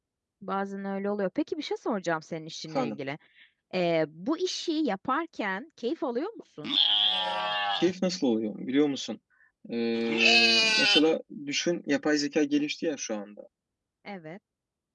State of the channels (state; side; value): identical; both; correlation 1.00